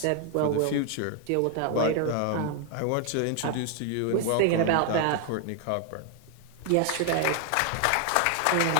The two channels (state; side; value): different; both; correlation 0.00